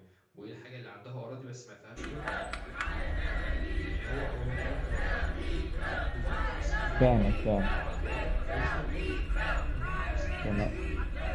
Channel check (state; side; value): identical; both; correlation 1.00